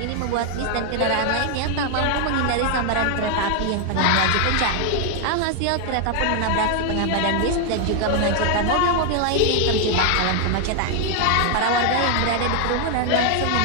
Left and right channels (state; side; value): different; both; correlation 0.00